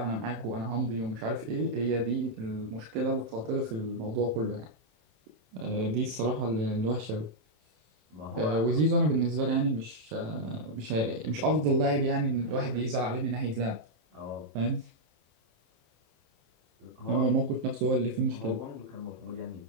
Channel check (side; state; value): left; late; 27 ms